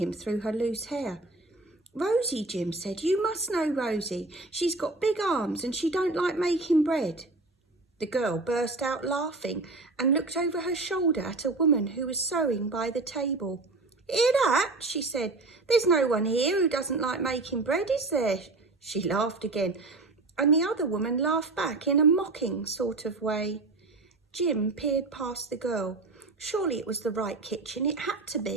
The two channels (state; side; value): quieter; left; 3.3 dB